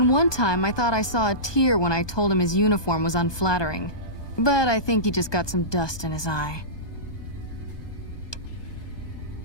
one time I thought I saw a tear when I told him his uniform was unflattering. But I think he just got some dust in his eye.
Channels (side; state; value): right; late; 1.2 ms